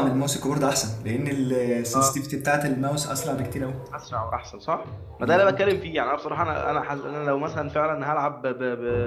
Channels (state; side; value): identical; both; correlation 1.00